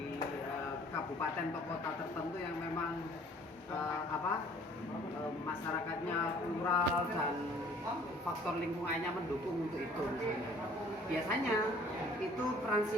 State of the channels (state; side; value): normal; both; correlation 0.54